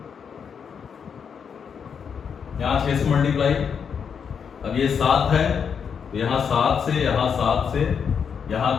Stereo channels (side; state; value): right; quieter; 6.9 dB